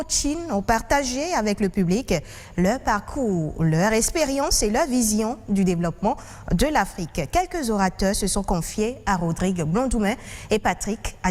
ont partagé avec le public leur parcours, leur expérience et leur vision du développement de l'Afrique. Quelques orateurs se sont confiés à Rodrigue Blondoumain et Patrick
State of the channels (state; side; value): identical; both; correlation 1.00